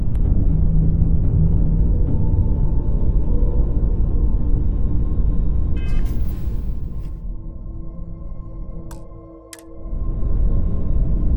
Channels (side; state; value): both; identical; correlation 1.00